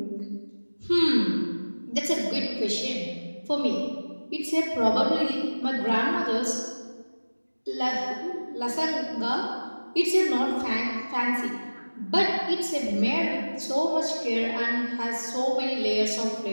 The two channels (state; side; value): inverted; both; correlation -1.00